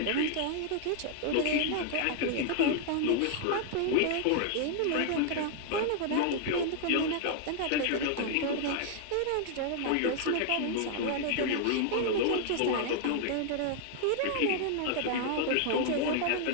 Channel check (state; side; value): different; both; correlation 0.00